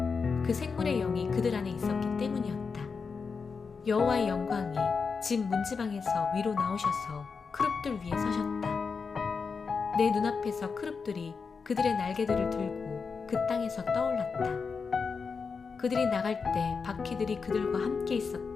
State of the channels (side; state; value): right; quieter; 5.2 dB